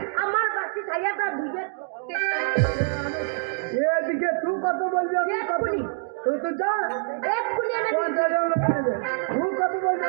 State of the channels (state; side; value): silent; left; digital silence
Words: আমার বাসি সাইয়াটা ধুইয়ে এদিকে তুই কত বলবি আমি কত এক্ষুনি। তুই যা এক্ষুনি এনে দিচ্ছি। 50,000 লোন নিবি তুই কত বলবি